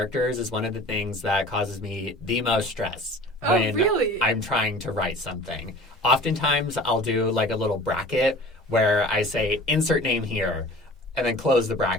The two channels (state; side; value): normal; both; correlation 0.43